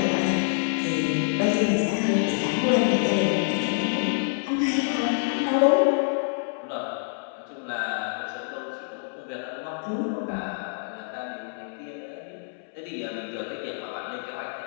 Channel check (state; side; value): silent; right; 60 dB below the other